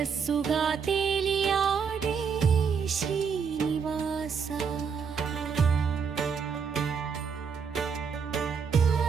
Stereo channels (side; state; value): left; quieter; 6.3 dB